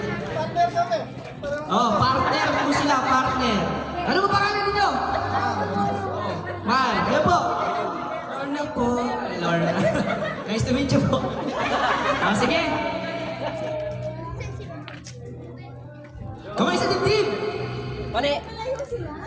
Partner po sila, partner. Ano ba pangalan ninyo? Mal, kayo po. Lorna po. Lorna. Nice to meet you po. Sige. Kamay sa dibdib. Mali.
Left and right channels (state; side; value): identical; both; correlation 1.00